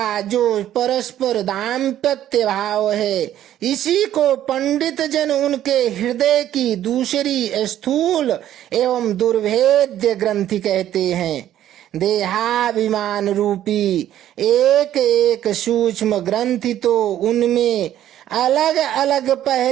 जो परस्पर दाम्पत्य भाव है, इसी को पंडित जन उनके हृदय की दूसरी स्थूल एवं दुर्भेद्य ग्रंथि कहते हैं। देहाभिमान रूपी एक एक सूक्ष्म ग्रंथि तो उनमें अलग अलग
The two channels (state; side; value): quieter; left; 11.9 dB